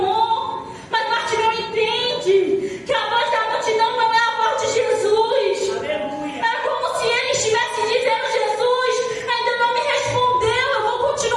Mas Bartimeu entende que a voz da multidão não é a voz de Jesus. É como se ele estivesse dizendo: Jesus ainda não me respondeu, eu vou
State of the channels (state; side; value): identical; both; correlation 1.00